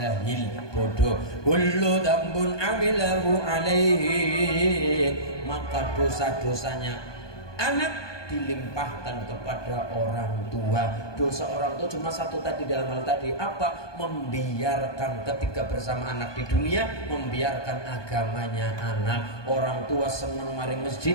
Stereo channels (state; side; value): late; right; 1.2 ms